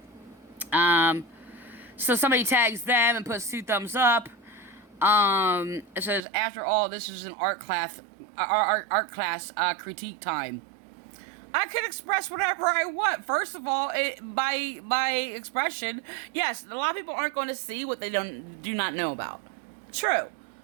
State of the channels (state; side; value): drops out; left; at 6.2 s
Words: So, somebody tags them and puts 2 thumbs up. It says, after all, this is an art class critique time. I can express whatever I want. First of all, by expression, yes, a lot of people aren't going to see what they do not know about. True.